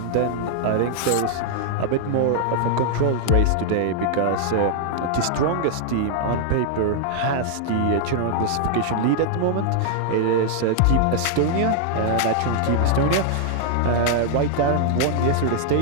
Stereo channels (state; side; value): different; both; correlation -0.01